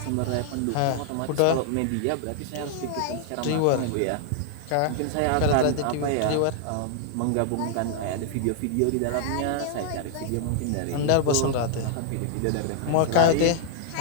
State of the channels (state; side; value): different; both; correlation 0.00